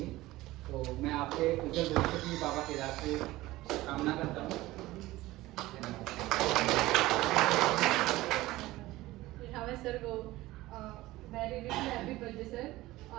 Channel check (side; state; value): left; quieter; 17.8 dB